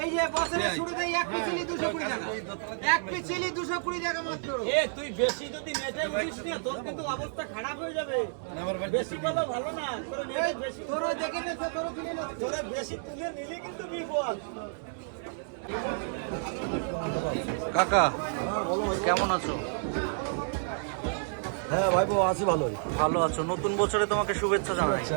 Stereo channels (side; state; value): left; silent; digital silence